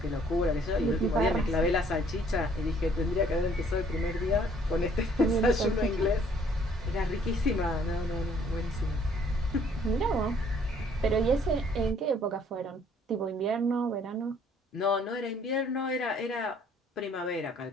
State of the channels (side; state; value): both; normal; correlation 0.61